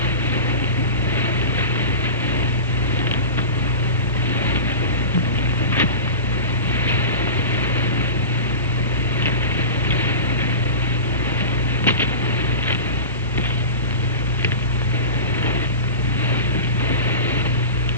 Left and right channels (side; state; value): both; inverted; correlation -0.30